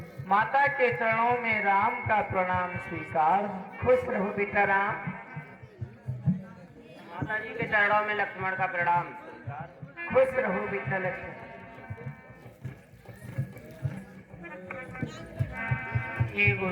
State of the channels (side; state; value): both; identical; correlation 1.00